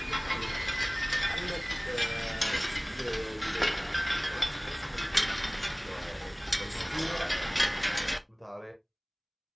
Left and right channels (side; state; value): both; identical; correlation 1.00